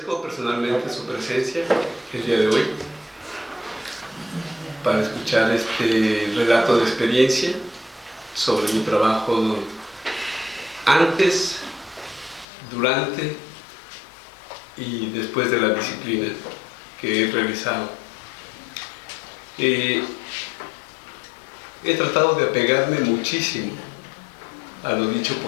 personalmente su presencia el día de hoy para escuchar este relato de experiencia sobre mi trabajo antes, durante y después de la disciplina que he realizado. He tratado de apegarme muchísimo a lo dicho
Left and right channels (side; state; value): right; drops out; at 12.5 s